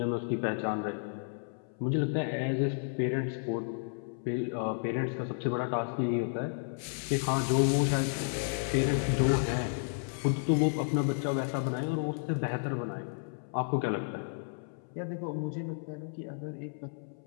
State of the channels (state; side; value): silent; right; 56 dB below the other